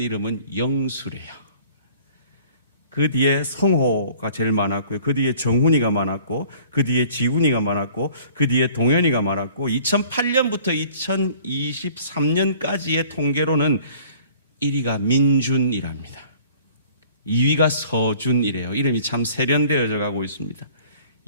이름은 영수래요. 그 뒤에 성호가 제일 많았고요. 그 뒤에 정훈이가 많았고, 그 뒤에 지훈이가 많았고, 그 뒤에 동현이가 많았고, 2008년부터 2023년까지의 통계로는 1위가 민준이랍니다. 2위가 서준이래요. 이름이 참 세련되어져 가고 있습니다.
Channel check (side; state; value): both; inverted; correlation -0.51